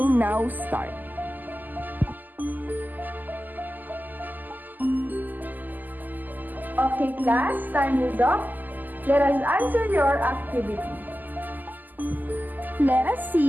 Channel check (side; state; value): left; late; 0.085 ms